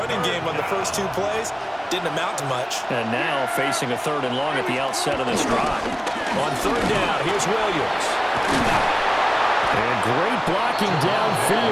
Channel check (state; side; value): identical; both; correlation 1.00